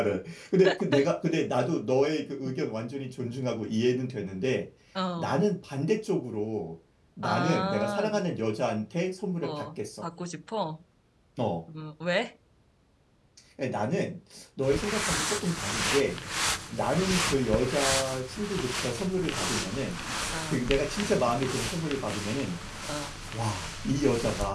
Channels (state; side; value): identical; both; correlation 1.00